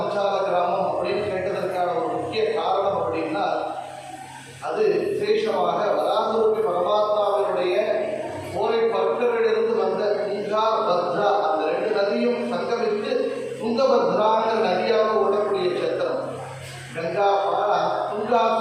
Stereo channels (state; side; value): identical; both; correlation 1.00